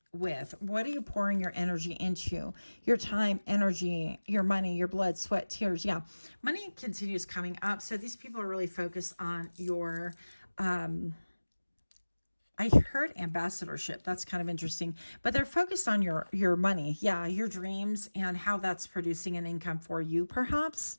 with? What are you pouring your energy into? Your time, energy, your money, your blood, sweat, tears. Yeah, money continues coming up. So these people are really focused on your... I heard ambassadorship. That's kind of interesting. But they're focused on your money. Yeah, your dreams and how that's producing an income for you, perhaps.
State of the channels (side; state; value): both; inverted; correlation -1.00